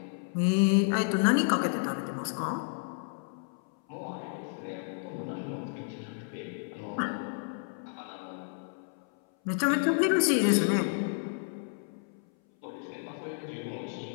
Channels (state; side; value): silent; right; 57 dB below the other